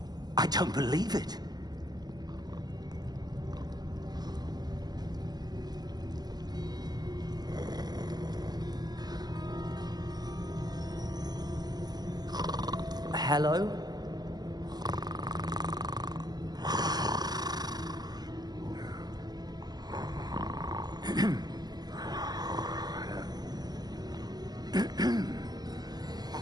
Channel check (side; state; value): left; late; 0.20 ms